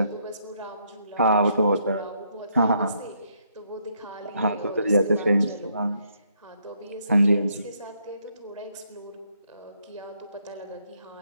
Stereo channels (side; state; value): both; inverted; correlation -0.73